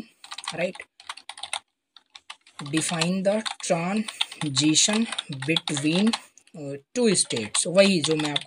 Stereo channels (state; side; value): identical; both; correlation 1.00